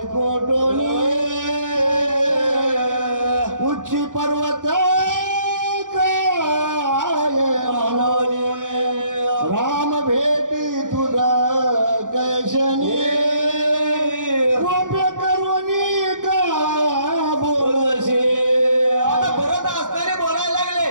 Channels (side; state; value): left; late; 0.88 ms